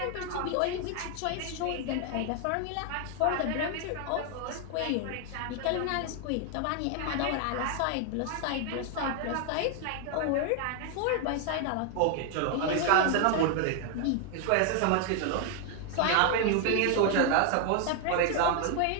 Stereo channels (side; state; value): both; different; correlation 0.00